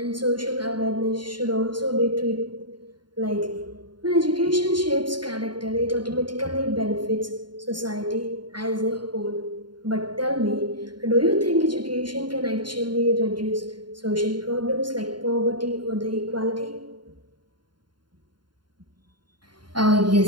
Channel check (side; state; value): left; late; 0.71 ms